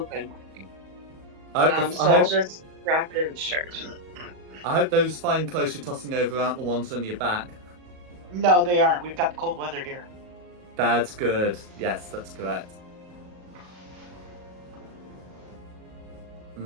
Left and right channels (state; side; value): late; left; 38 ms